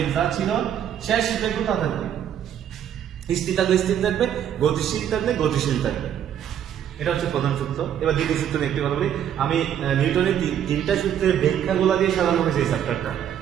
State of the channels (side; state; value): left; quieter; 9.7 dB